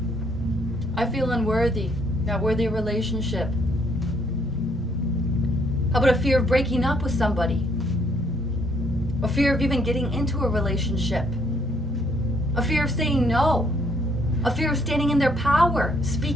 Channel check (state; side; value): normal; both; correlation 0.68